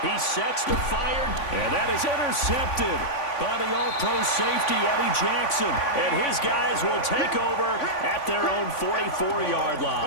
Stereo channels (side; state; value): right; late; 3.5 ms